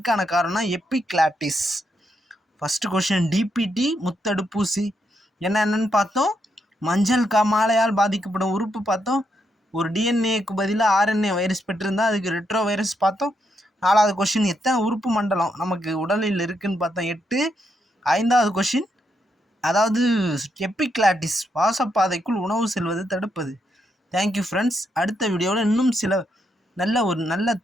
காரணம் எப்பிக்ளாட்டிஸ். ஃபஸ்ட்டு கொஷின் டிபிடி முத்தடுப்பூசி என்னென்னு பார்த்தோம். மஞ்சள் காமாலையால் பாதிக்கப்படும் உறுப்பு பார்த்தோம். ஒரு டிஎன்ஏக்கு பதிலாக ஆர்என்ஏ வைரஸ் பெற்றிருந்தால் அதுக்கு ரெட்ரோ வைரஸ் பார்த்தோம். நாலாவது கொஷின், எத்தனை உறுப்பு மண்டலம் நமக்கு உடலில் இருக்குதுன்னு பார்த்தோம் 8. ஐந்தாவது கொஷின், அதாவது எப்பிக்ளாட்டிஸ், சுவாசப்பாதைக்குள் உணவு செல்வது தடுப்பது. Thank you friends. அடுத்த வீடியோவில் இன்னும் சில நல்ல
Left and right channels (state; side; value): normal; both; correlation 0.80